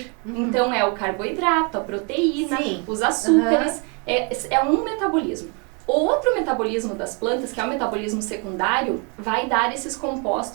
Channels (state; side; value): quieter; left; 34.9 dB